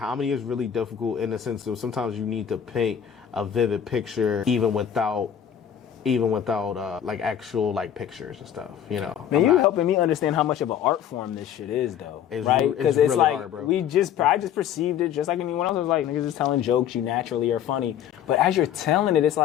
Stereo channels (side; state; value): right; quieter; 9.4 dB